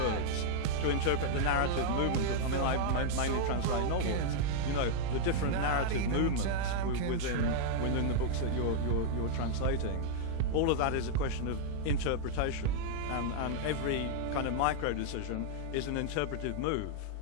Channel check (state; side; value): different; both; correlation -0.01